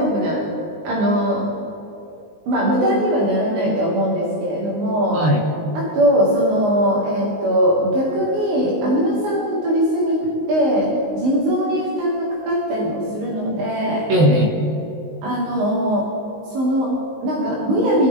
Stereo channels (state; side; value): late; left; 19 ms